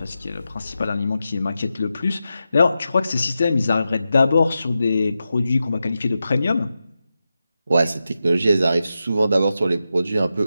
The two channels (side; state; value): both; inverted; correlation -0.90